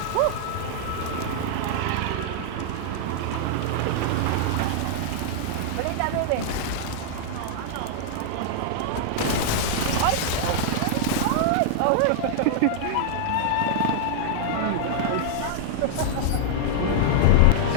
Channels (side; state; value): both; different; correlation -0.01